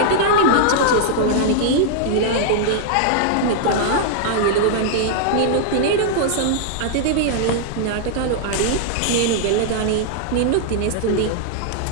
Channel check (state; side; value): different; both; correlation -0.01